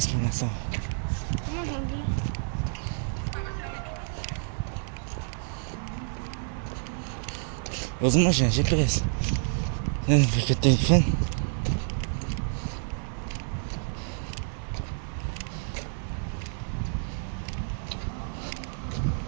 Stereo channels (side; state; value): left; silent; digital silence